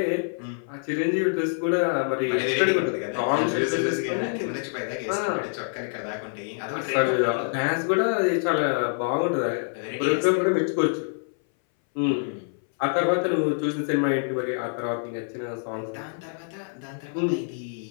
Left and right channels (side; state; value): right; silent; 60 dB below the other